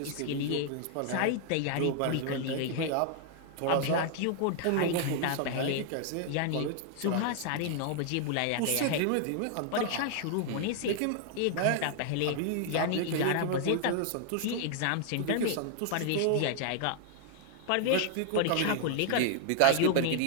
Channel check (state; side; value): different; both; correlation 0.00